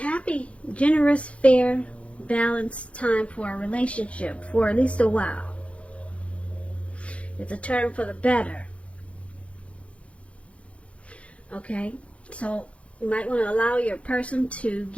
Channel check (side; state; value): right; late; 0.062 ms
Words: happy, generous, fair, balanced time for a relationship for at least a while. It's a turn for the better. Okay? So you might want to allow your person to